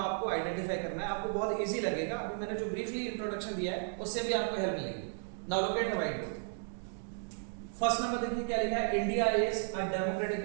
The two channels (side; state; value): left; silent; digital silence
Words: आइडेंटिफाई करना है। आपको बहुत इजी लगेगा। अभी मैंने जो ब्रीफली इंट्रोडक्शन दिया है उससे भी आपको हेल्प मिलेगी। Now look at the white board. First number देखिए क्या लिखा है? India is a democratic